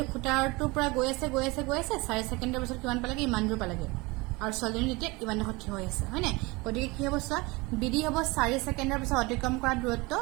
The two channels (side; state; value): left; quieter; 24.3 dB